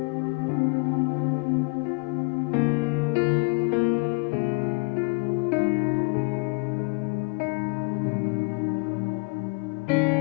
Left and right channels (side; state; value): right; quieter; 34.1 dB